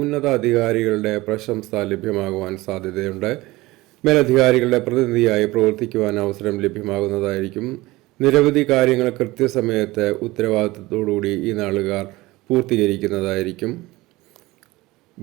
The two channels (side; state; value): left; quieter; 20.0 dB